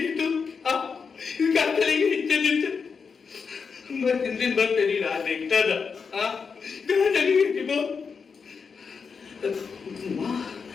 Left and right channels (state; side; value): quieter; right; 5.6 dB